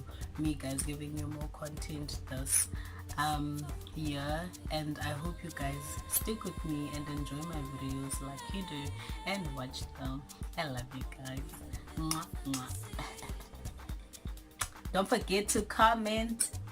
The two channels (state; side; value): identical; both; correlation 1.00